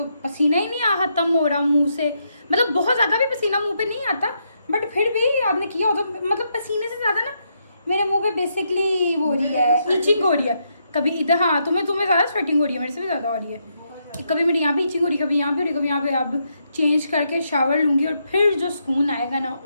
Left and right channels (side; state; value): both; inverted; correlation -0.79